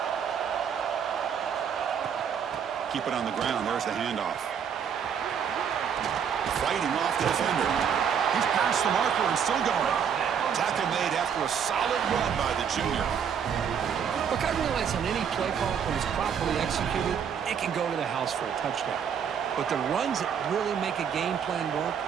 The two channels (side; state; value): left; quieter; 7.6 dB